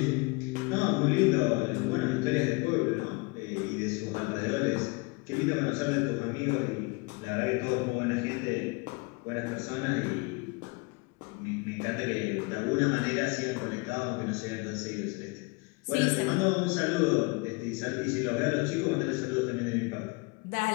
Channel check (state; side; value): quieter; right; 28.0 dB